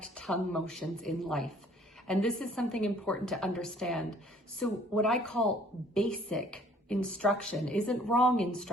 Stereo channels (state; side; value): normal; both; correlation 0.57